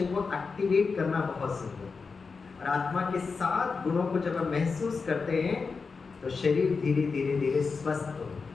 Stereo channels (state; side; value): quieter; right; 4.8 dB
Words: को एक्टिवेट करना बहुत सुंदर है। और आत्मा के 7 गुणों को जब हम महसूस करते हैं तो शरीर धीरे धीरे धीरे स्वस्थ होता